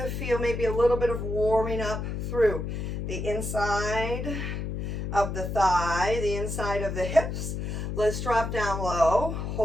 feel maybe a little bit of warming up through the inside of the thigh, the inside of the hips, Let's drop down low,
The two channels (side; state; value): left; noise; hum, 4 dB below the sound